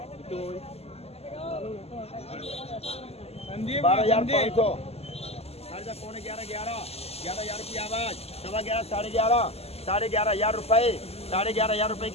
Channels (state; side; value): late; right; 0.29 ms